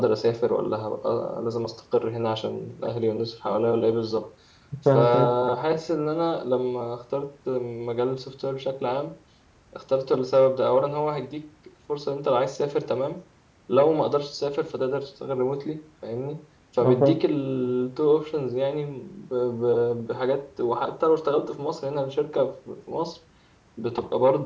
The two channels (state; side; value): identical; both; correlation 1.00